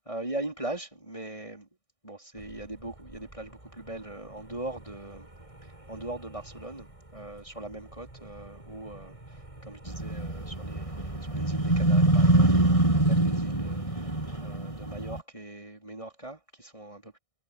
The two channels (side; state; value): right; late; 1.6 ms